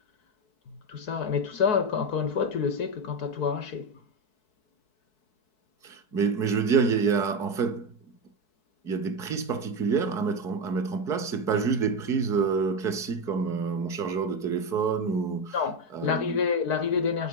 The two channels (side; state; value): right; late; 4.6 ms